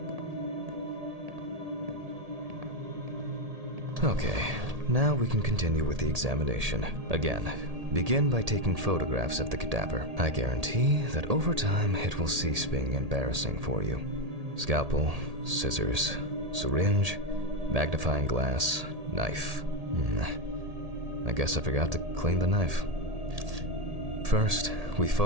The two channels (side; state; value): left; late; 1.8 ms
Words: Okay, now we can continue with the examination. Again, begin by taking photographs of the cadaver. I guarantee that over time it will cease being embarrassing for you. Scalpel, scissors, syringe, magnifying glass, knife. I guess I forgot to clean the knife. First, we